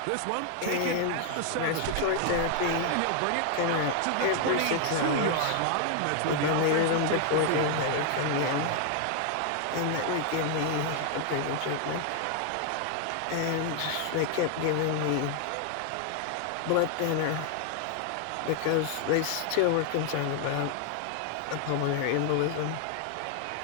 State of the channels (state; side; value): different; both; correlation 0.00